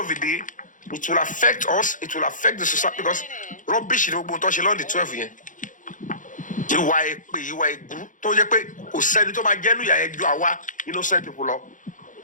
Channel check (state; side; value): late; right; 0.38 ms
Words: the day it will affect us it will affect the society because rubbish ni gbogbo tó ṣe lọ́ọ̀dì 12 yẹn ìwà èpè ìwà ègún tó yẹ pé kò sẹ́ni tó máa jẹ́nu ìyà yẹn ju àwa innocent people lọ